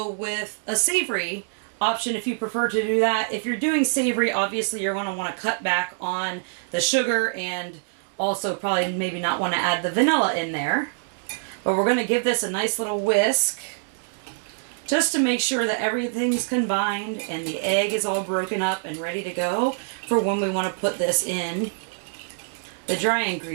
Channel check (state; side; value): silent; left; digital silence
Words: with a savory option if you prefer to do that. If you're doing savory, obviously you're going to want to cut back on the sugar and also probably maybe not want to add the vanilla in there. But we're going to give this a nice little whisk just to make sure that everything's combined and the egg is all broken up and ready to go for when we want to put this in the dry